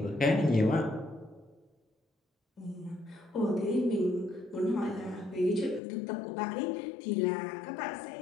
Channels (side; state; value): right; drops out; at 5.8 s